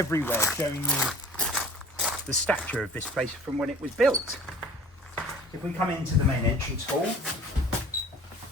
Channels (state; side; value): normal; both; correlation 0.45